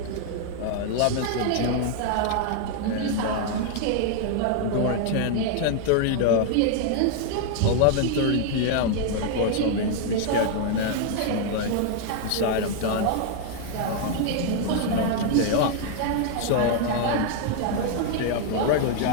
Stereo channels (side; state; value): both; different; correlation 0.00